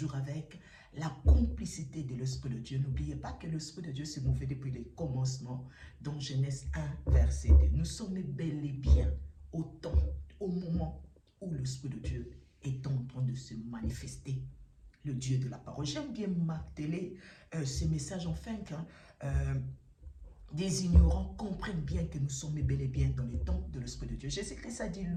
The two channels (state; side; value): identical; both; correlation 1.00